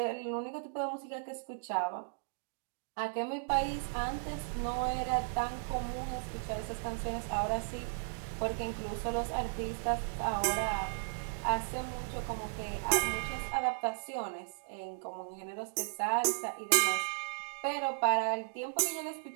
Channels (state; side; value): silent; left; digital silence